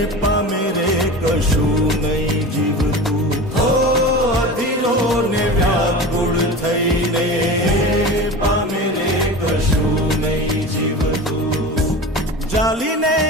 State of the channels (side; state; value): both; normal; correlation 0.32